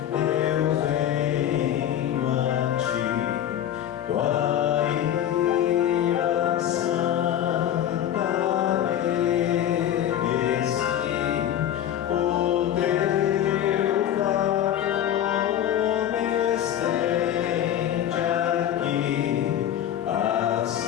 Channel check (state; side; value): quieter; right; 10.8 dB